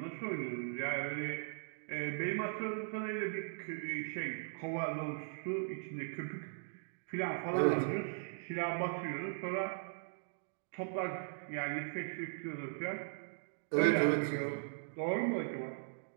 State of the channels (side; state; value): left; silent; digital silence